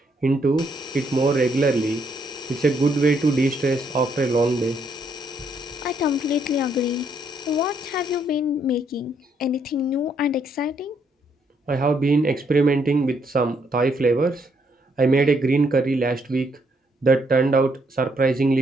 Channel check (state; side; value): normal; both; correlation 0.73